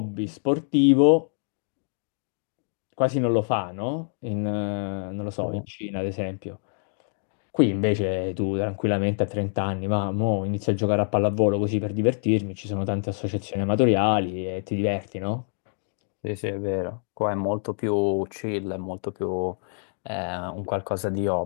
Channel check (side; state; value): right; silent; digital silence